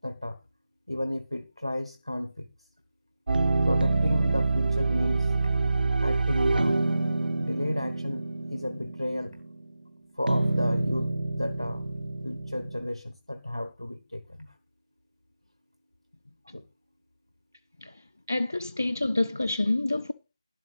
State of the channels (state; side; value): inverted; both; correlation -0.93